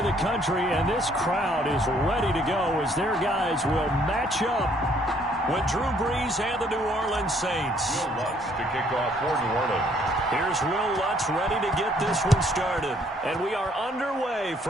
the country, and this crowd is ready to go as their guys will match up with Drew Brees and the New Orleans Saints. Will Lutz to kick off for New Orleans. Here's Will Lutz ready to get this one started. And we are underway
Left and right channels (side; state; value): both; normal; correlation 0.64